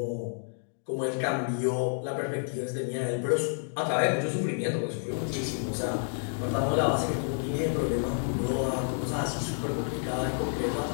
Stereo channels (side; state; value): right; silent; digital silence